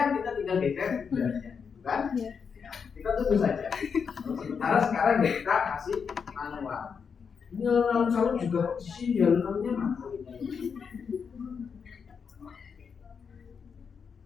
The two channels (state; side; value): quieter; right; 6.2 dB